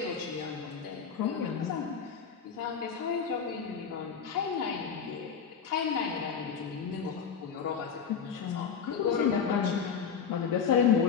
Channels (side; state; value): right; quieter; 6.8 dB